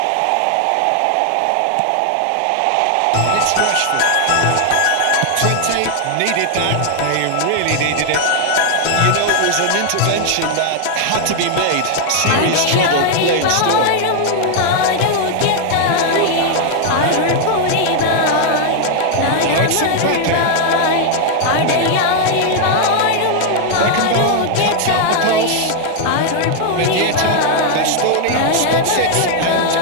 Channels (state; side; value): different; both; correlation 0.00